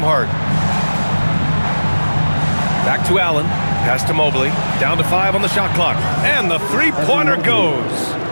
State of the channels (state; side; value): inverted; both; correlation -1.00